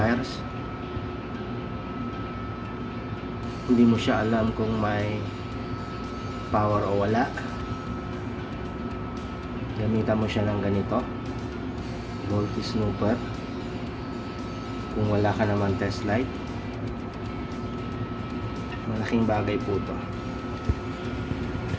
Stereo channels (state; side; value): identical; both; correlation 1.00